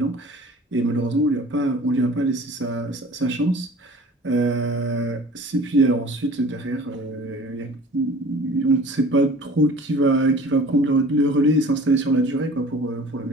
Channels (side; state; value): both; normal; correlation 0.45